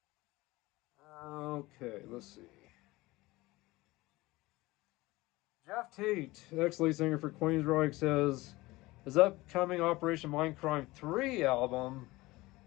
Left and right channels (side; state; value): right; quieter; 20.3 dB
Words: Okay, let's see. Jeff Tate, ex-lead singer for Queensryche, says his upcoming Operation Mindcrime 3 album